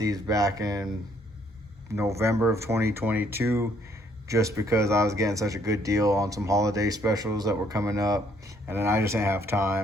back in November of 2022 just because I was getting such a good deal on some holiday specials that were coming up, and then I just didn't have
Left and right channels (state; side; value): normal; both; correlation 0.66